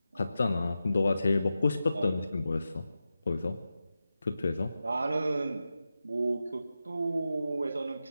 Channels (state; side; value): inverted; both; correlation -0.91